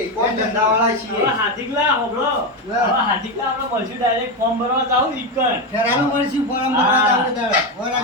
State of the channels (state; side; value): normal; both; correlation 0.12